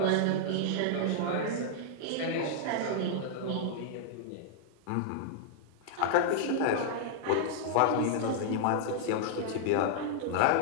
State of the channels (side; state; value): both; different; correlation -0.01